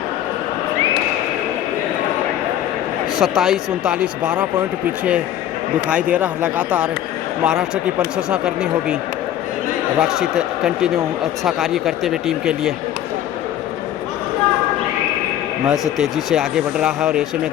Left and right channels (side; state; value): right; quieter; 11.6 dB